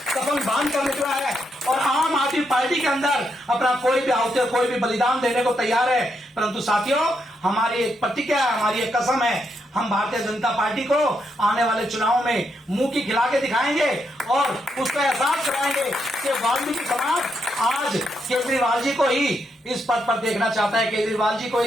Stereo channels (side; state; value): both; normal; correlation 0.80